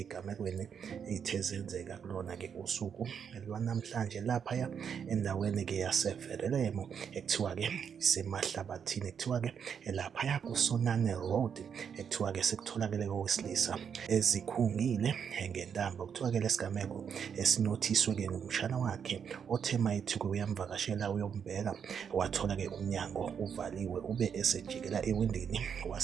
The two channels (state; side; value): quieter; left; 7.4 dB